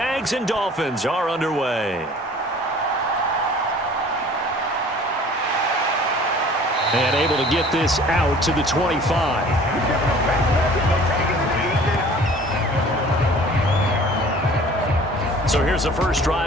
and Dolphins are underway. And able to get this out to the 25. So here's the first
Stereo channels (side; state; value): both; normal; correlation 0.49